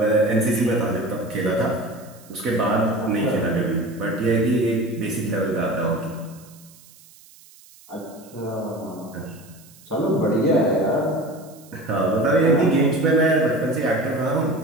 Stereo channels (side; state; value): right; noise; hiss, 24 dB below the sound